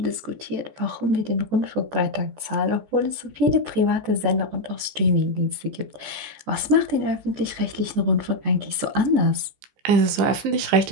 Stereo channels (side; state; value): left; late; 14 ms